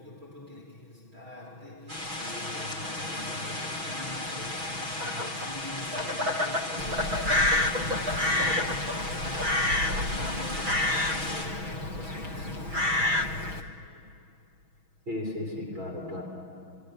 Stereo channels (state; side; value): late; left; 6.2 ms